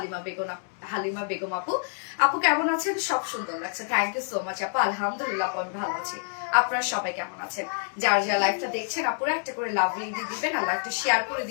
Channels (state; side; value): silent; right; digital silence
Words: Halima Begum আপু, আপু কেমন আছেন? সব সুন্দর লাগছে, থ্যাংক ইউ সো মাচ আপু। আলহামদুলিল্লাহ আমি ভালো আছি, আপনারা সবাই কেমন আছেন? যার যার লাইভটা দেখছেন আপুরা একটা করে লাভ রেডি দিবেন আর লাইভটা শেয়ার করে